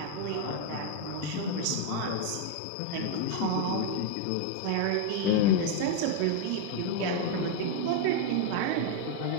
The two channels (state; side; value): different; both; correlation 0.00